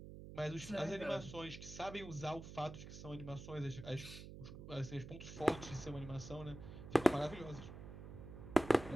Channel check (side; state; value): right; noise; hum, 12 dB below the sound